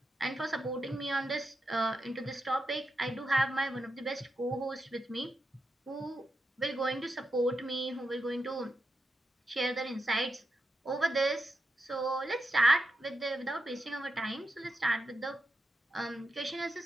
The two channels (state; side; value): normal; both; correlation 0.87